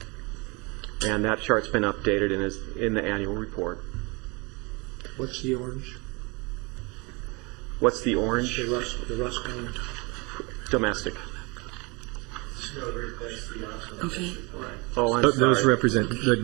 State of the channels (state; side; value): quieter; left; 28.1 dB